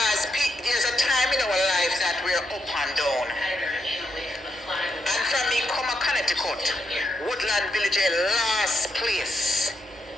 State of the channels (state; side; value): normal; both; correlation 0.81